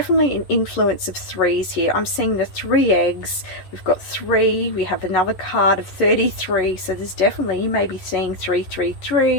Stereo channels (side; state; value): right; late; 11 ms